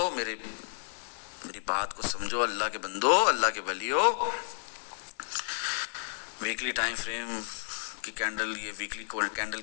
मेरी बात को समझो, अल्लाह के बंदो, अल्लाह के वलियो। वीकली टाइम फ्रेम की कैंडल, ये वीकली कैंडल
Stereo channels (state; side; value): silent; right; digital silence